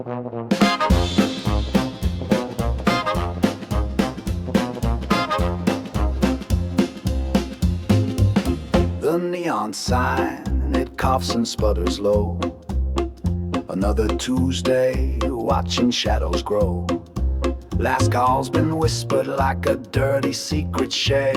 neon sign, it coughs and sputters low. Another Tuesday, watching shadows grow. Last call's been whispered like a dirty secret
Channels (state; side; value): identical; both; correlation 1.00